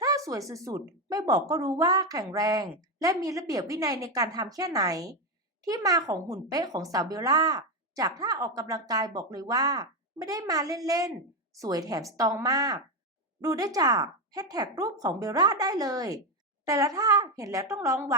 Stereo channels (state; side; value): normal; both; correlation 0.09